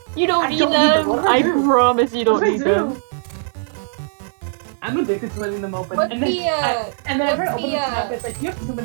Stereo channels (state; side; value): silent; left; 63 dB below the other